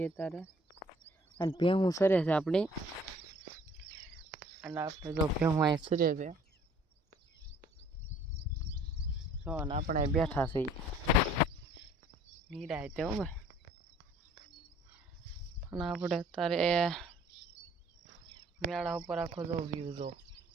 અત્યારે અને ભેહું સરે છે આપણી. અને આપણે જો ભેહું અહીં સરે છે જો, અને આપણે બેઠા છીએ નિરાય તે ભાઈ. અને આપણે અત્યારે મેળા ઉપર આખો જો વ્યૂ જો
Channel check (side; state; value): both; normal; correlation 0.55